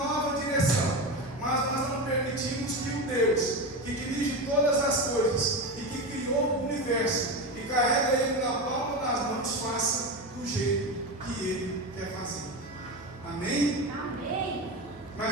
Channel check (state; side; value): normal; both; correlation 0.20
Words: direção, mas nós não permitimos que o Deus que dirige todas as coisas e que criou o universo e carrega ele na palma das mãos faça do jeito que ele quer fazer. Amém? Amém.